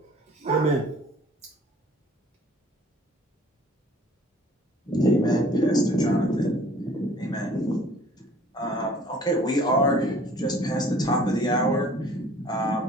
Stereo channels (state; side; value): normal; both; correlation 0.53